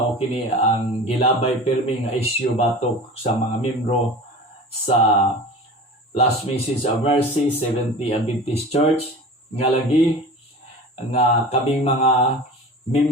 kini ang gilabay pirmi nga isyu batok sa mga membro sa Last Message of Mercy Seventh-day Adventist Church nga lagi nga kaming mga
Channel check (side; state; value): both; normal; correlation 0.37